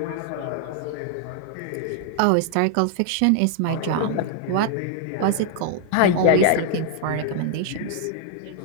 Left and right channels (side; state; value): both; different; correlation 0.00